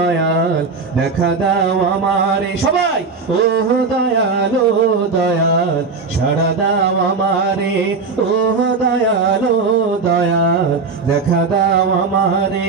দেখা দাও আমারে, সবাই ওহ দয়াল দয়াল সাড়া দাও আমারে, ওহ দয়াল দয়াল দেখা দাও আমারে।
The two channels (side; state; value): left; quieter; 4.6 dB